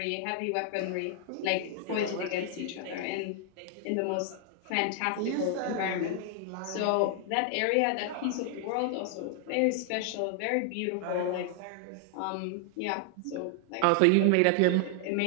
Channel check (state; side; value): different; both; correlation 0.00